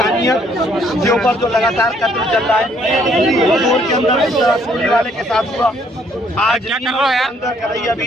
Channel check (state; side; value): normal; both; correlation 0.66